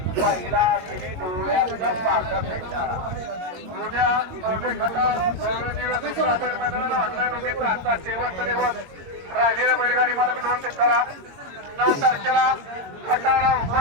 राहिलेल्या बैलगाडी मालक नोंद करा. 9 तारखेला खटारा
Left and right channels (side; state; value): left; late; 22 ms